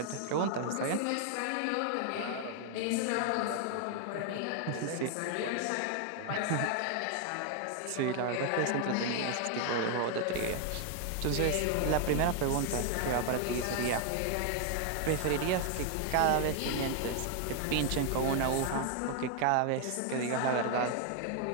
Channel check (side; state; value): both; different; correlation 0.00